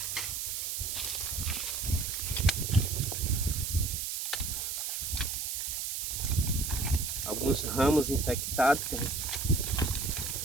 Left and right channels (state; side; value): noise; right; hiss, 2 dB below the sound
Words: alguns ramos infectados que a gente